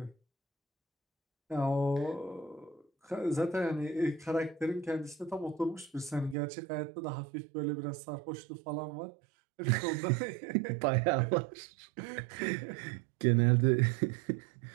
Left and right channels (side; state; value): left; drops out; at 6.4 s